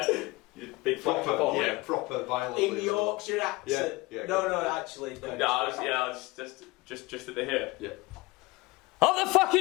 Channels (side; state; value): right; quieter; 22.5 dB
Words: Big proper violent. In Yorkshire accent. Yeah, no, actually, no. I was just at the here. Yeah. Up the